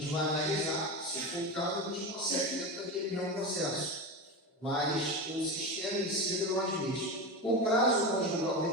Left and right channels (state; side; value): normal; both; correlation 0.21